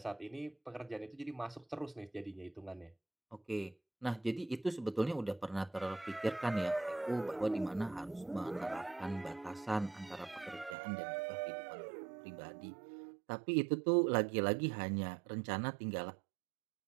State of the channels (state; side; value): drops out; left; at 10.8 s